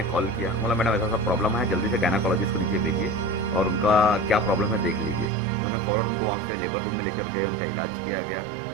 कॉल किया। बोला मैडम ऐसा सा प्रॉब्लम है, जल्दी से गायनाकोलॉजिस्ट को नीचे भेजिए और उनका क्या प्रॉब्लम है देख लीजिए। उन्होंने फ़ौरन उनको वहाँ से लेबर रूम में लेकर गए, उनका इलाज किया गया।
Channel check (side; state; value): left; drops out; at 5.3 s